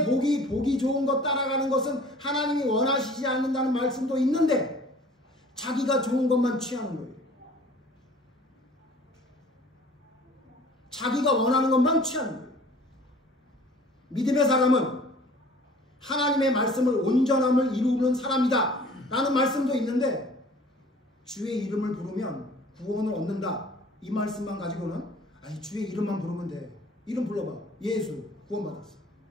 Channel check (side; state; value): both; normal; correlation 0.50